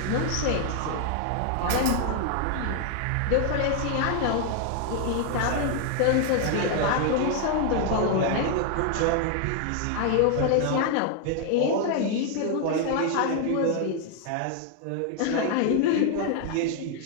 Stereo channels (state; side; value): different; both; correlation 0.00